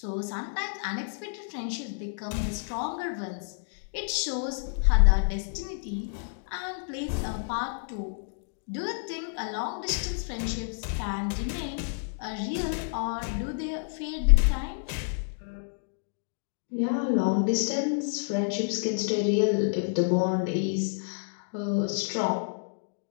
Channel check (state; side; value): silent; right; digital silence